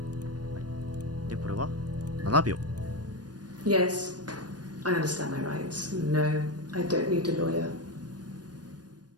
はい。で、これは7秒。Yes, I understand my rights. No, I don't need a lawyer.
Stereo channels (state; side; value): late; left; 0.69 ms